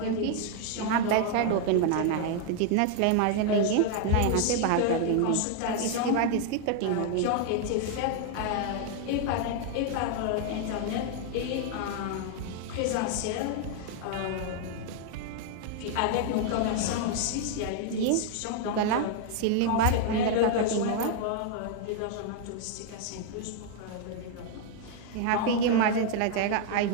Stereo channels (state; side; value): different; both; correlation 0.00